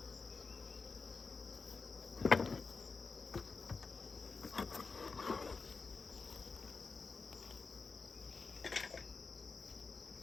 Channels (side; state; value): right; quieter; 4.5 dB